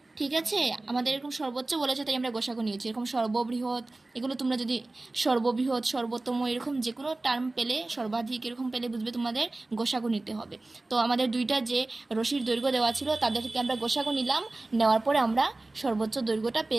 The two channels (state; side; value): quieter; left; 3.0 dB